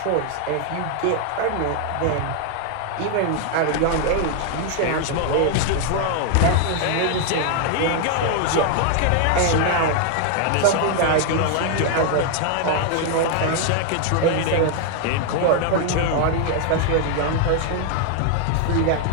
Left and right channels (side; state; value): both; different; correlation 0.00